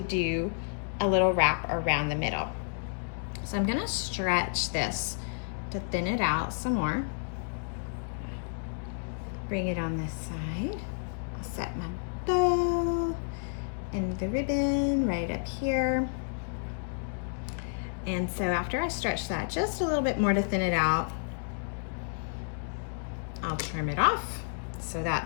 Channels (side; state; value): right; silent; digital silence